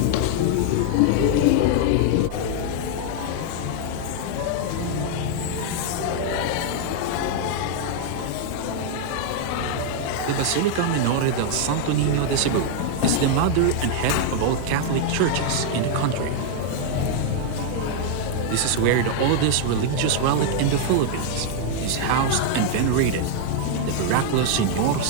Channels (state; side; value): different; both; correlation 0.00